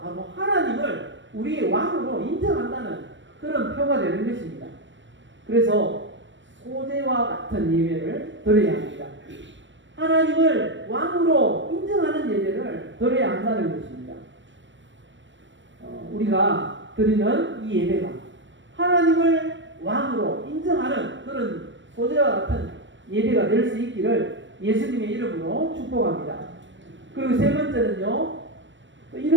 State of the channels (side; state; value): left; late; 0.54 ms